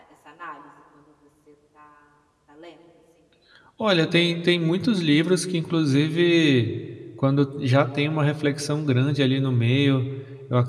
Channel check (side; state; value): both; identical; correlation 1.00